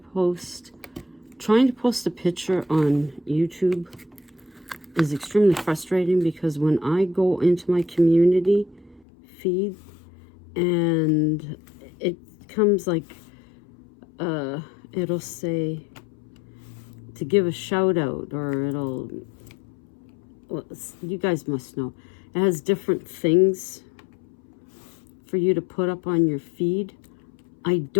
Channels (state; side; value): drops out; right; at 9.1 s